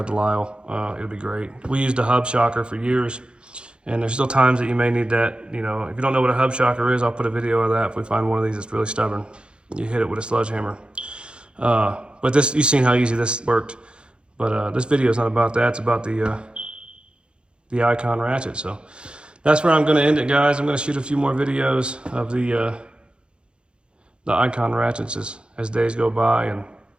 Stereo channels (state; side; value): late; left; 0.054 ms